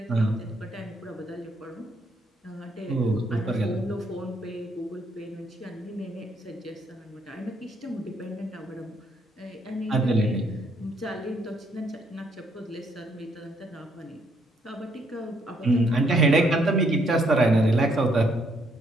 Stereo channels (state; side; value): normal; both; correlation 0.71